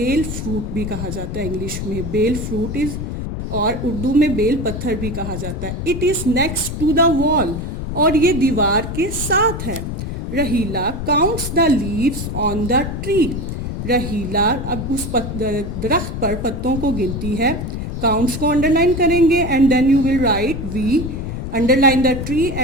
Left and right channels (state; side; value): noise; left; rumble, 5 dB below the sound